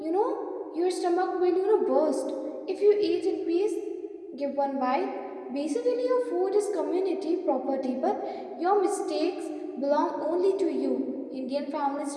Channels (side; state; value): both; identical; correlation 1.00